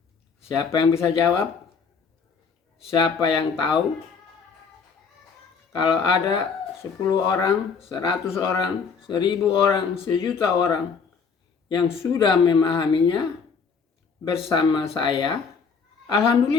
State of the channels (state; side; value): quieter; right; 5.6 dB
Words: siapa yang bisa jawab? Siapa yang tahu? Kalau ada 10 orang, 100 orang, 1000 orang, 1.000.000 orang yang sudah memahaminya bersama saya,